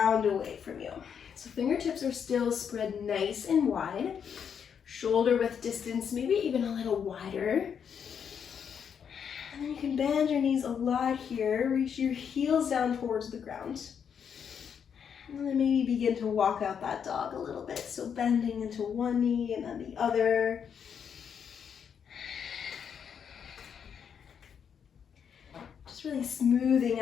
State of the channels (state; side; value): quieter; right; 7.5 dB